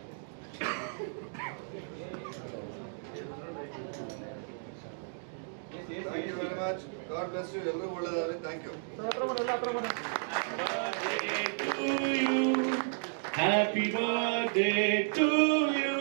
Thank you very much. God bless you. ಎಲ್ಲರೂ ಒಳ್ಳೆದಾಗಲಿ. Thank you. Happy birthday to you.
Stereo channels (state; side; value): silent; left; digital silence